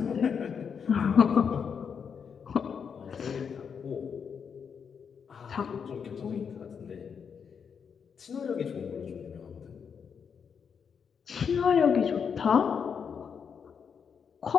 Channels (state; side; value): quieter; right; 6.8 dB